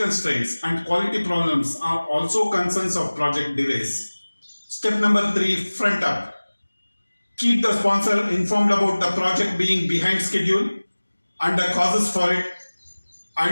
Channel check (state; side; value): inverted; both; correlation -1.00